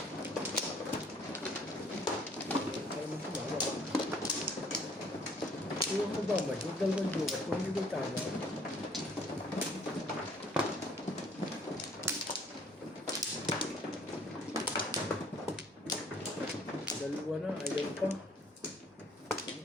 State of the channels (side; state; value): both; normal; correlation 0.59